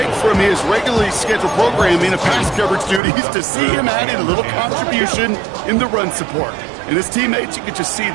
from his regularly scheduled programming of pass coverage duties to see him add in a little contribution in the run support. And his teammates, you can just see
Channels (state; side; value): drops out; left; at 3.0 s